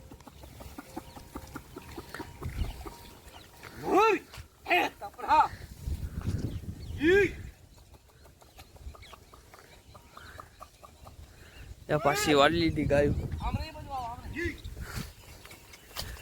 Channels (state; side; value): identical; both; correlation 1.00